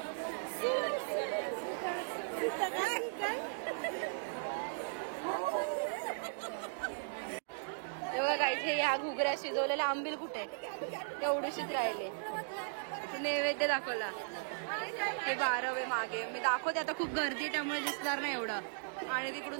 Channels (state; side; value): silent; left; digital silence